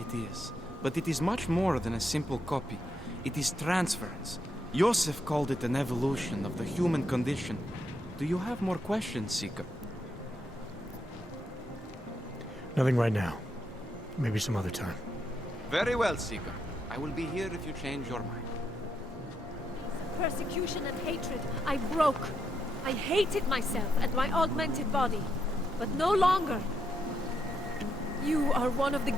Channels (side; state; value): both; normal; correlation 0.80